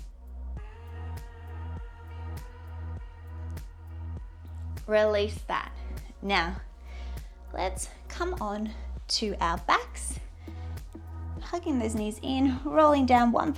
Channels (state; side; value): identical; both; correlation 1.00